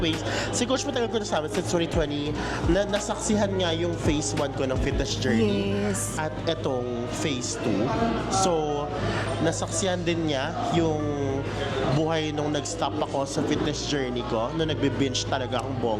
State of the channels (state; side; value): identical; both; correlation 1.00